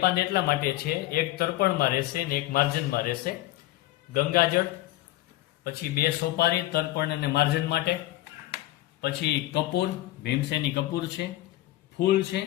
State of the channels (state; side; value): quieter; right; 16.5 dB